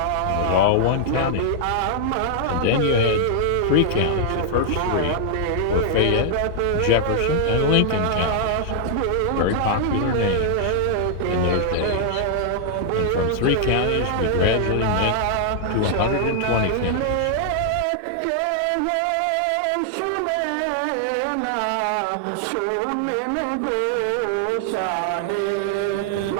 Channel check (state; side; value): different; both; correlation 0.00